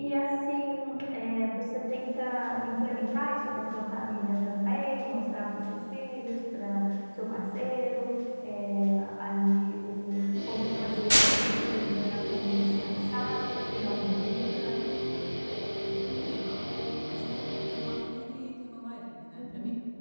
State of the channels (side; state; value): both; inverted; correlation -1.00